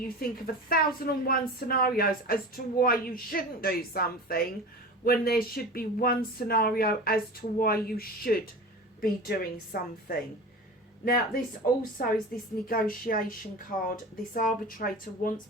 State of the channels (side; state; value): both; normal; correlation 0.33